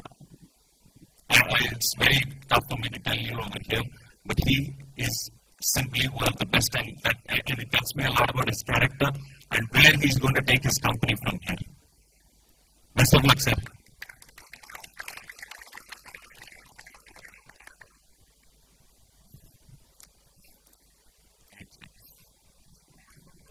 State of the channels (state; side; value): identical; both; correlation 1.00